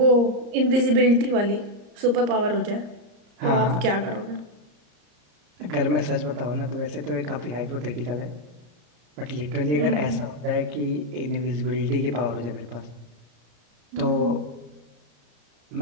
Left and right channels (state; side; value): late; left; 34 ms